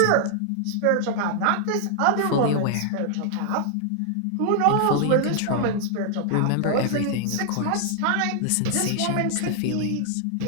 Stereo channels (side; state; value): both; different; correlation -0.01